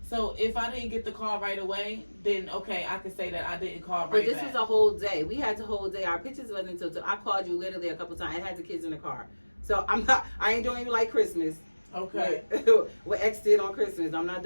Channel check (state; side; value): inverted; both; correlation -1.00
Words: So if I didn't get the call right away, then okay, I can say that I didn't call right back. But this was a whole day. We had the whole day. Our pictures wasn't until I called you literally a couple times. I had the kids in the car. So I ain't doing you like Christmas. Okay. What X did on Christmas. I'm not